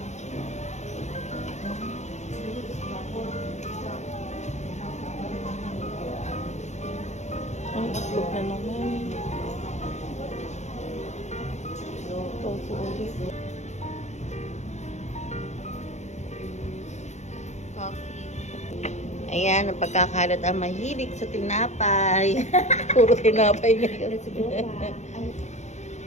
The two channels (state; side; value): late; right; 0.33 ms